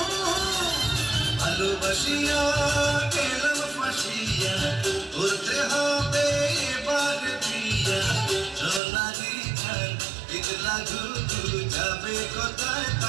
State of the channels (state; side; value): drops out; left; at 8.8 s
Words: ভালোবাসিয়া গেলাম ফাঁসিয়া, করতে হবে এবার বিয়া। সোনালি চাঁদ ইতলা ঘুঘু যাবে কোথায়